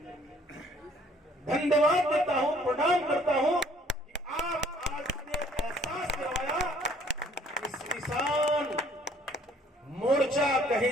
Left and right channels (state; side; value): normal; both; correlation 0.59